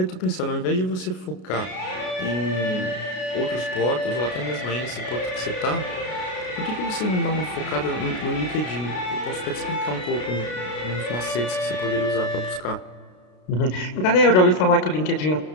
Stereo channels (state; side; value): late; right; 33 ms